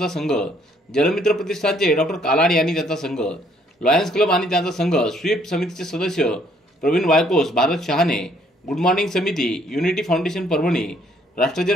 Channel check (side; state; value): both; normal; correlation 0.65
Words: संघ, जलमित्र प्रतिष्ठानचे डॉक्टर कालाड आणि त्यांचा संघ, लॉयन्स क्लब आणि त्यांचा संघ, स्वीप समितीचे सदस्य प्रवीण वायकोस, भारत शहाणे, गुड मॉर्निंग समिती, unity foundation Parbhani,